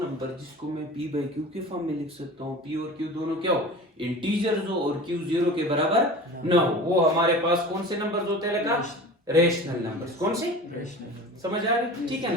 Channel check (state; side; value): normal; both; correlation 0.36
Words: जिसको मैं p/q के फॉर्म में लिख सकता हूँ p और q दोनों क्या हो इंटीजर्स हो और q 0 के बराबर न हो वो हमारे पास कौन से नंबर्स होते हैं लगा रेशनल नंबर्स कौन से समझ आ रही ठीक है